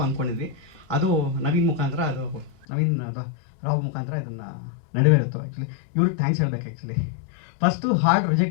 ಅಂದ್ಕೊಂಡಿದ್ವಿ. ಅದು ನವೀನ್ ಮುಖಾಂತರ, ಅದು ನವೀನ್ ರಾವ್ ಮುಖಾಂತರ ಇದನ್ನು ನಡೆವೇರಿತ್ತು. ಆ್ಯಕ್ಚುಲಿ ಇವ್ರಿಗೆ ಥ್ಯಾಂಕ್ಸ್ ಹೇಳ್ಬೇಕು. ಆ್ಯಕ್ಚುಲಿ ಫಸ್ಟು ಹಾಡು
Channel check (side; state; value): right; drops out; at 2.7 s